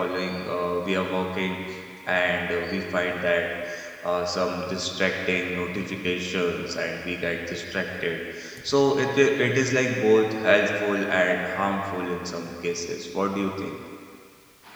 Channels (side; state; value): both; identical; correlation 1.00